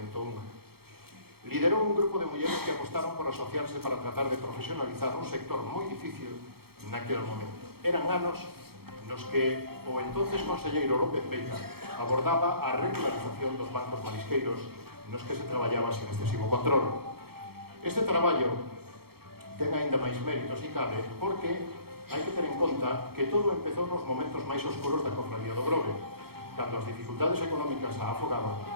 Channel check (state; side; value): late; left; 0.95 ms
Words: unha. Liderou un grupo de mulleres que apostaron por asociarse para tratar de profesionalizar un sector moi difícil naquele momento. Eran anos nos que o entonces conselleiro López Veiga abordaba a regularización dos bancos marisqueiros nos que se traballaba sin excesivo control. Este traballo ten aínda máis méritos e cabe porque hai que ter en conta que todo empezou nos momentos máis oscuros da cofradía do Grove, cando as dificultades económicas a afogaban